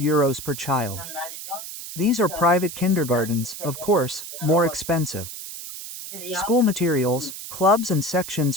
per child. These are private kindergartens, of course, more expensive. School materials, clubs and sections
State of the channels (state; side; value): noise; right; hiss, 10 dB below the sound